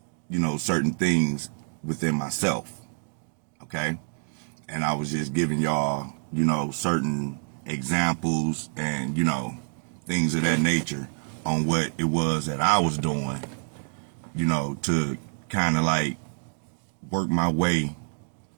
certain things within myself. Okay? And I was just giving y'all, certain examples and, things of that nature on what it was that I was doing, to kind of like work my way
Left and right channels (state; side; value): silent; left; digital silence